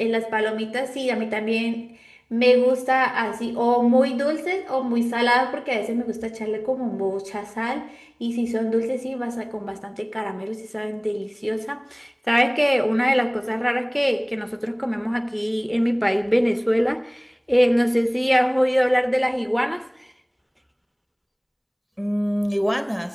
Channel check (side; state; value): both; identical; correlation 1.00